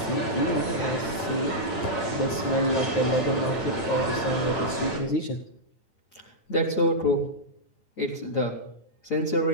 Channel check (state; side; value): late; right; 9.3 ms